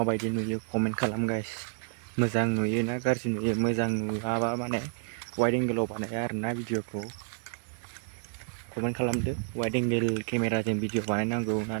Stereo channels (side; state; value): left; silent; 58 dB below the other